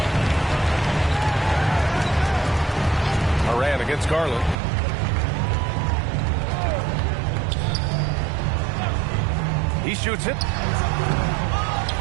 Moran against Garland. He shoots it.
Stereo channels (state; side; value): drops out; left; at 4.5 s